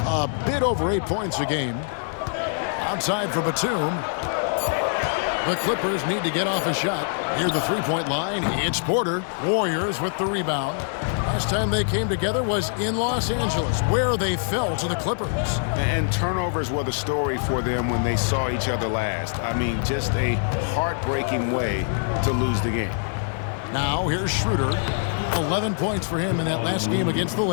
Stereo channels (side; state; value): right; silent; digital silence